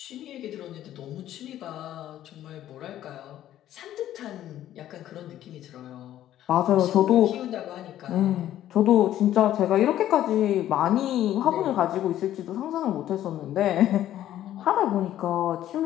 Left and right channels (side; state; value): right; quieter; 12.4 dB